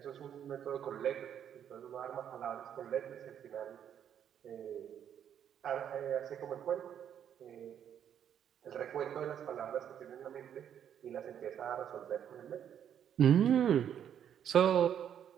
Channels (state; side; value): quieter; left; 9.2 dB